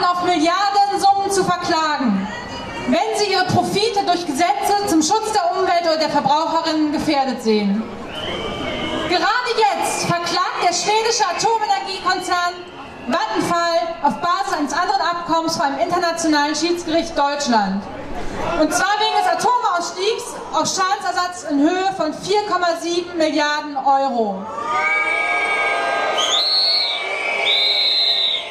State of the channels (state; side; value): identical; both; correlation 1.00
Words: auf Milliardensummen zu verklagen, wenn sie ihre Profite durch Gesetze zum Schutz der Umwelt oder der Verbraucherinnen gefährdet sehen. Gerade jetzt verklagt der schwedische Atomenergiekonzern Vattenfall auf Basis eines anderen Abkommens vor einem internationalen Schiedsgericht Deutschland. Und zwar wegen des Atomausstiegs auf Schadensersatz in Höhe von 4,7 Milliarden Euro.